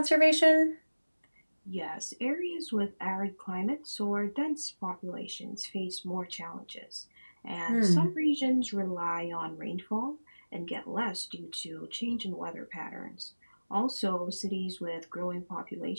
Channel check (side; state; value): both; inverted; correlation -1.00